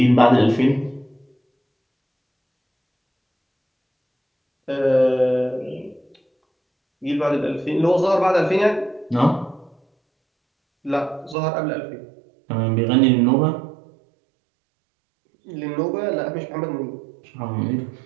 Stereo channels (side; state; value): left; drops out; at 11.4 s